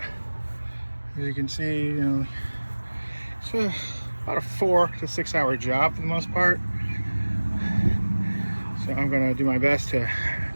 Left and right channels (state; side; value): inverted; both; correlation -1.00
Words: As you can see, it's about a 4 to 6 hour job for the most part. So I'm going to do my best to